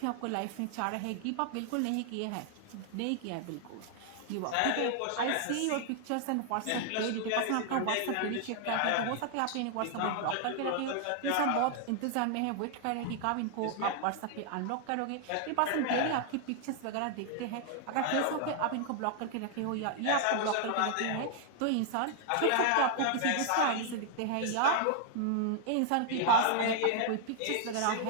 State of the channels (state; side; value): different; both; correlation 0.00